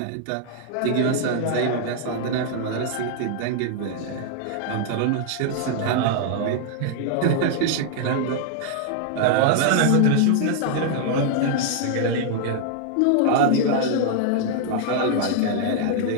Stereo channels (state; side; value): different; both; correlation 0.00